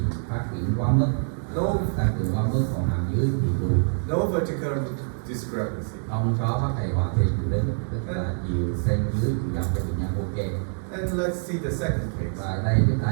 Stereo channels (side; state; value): left; silent; 61 dB below the other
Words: phát triển quá mức, tăng cường quá mức, còn hàm dưới thì lùi. No vertical discrepancy. Không có vấn đề hoàn thiện chiều đứng, tức là chiều trên dưới chiều dọc cho bệnh nhân ok. And let's see the second case. Và đây chúng